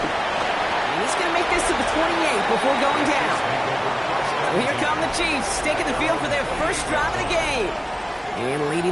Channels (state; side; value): identical; both; correlation 1.00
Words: And he's going to make this to the 28 before going down. So here come the Chiefs, taking the field for their first drive of the game. And leading